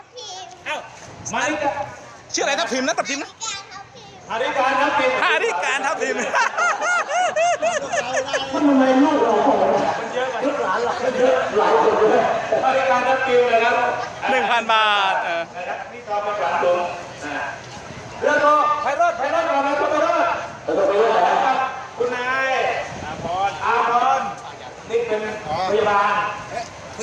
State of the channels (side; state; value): both; identical; correlation 1.00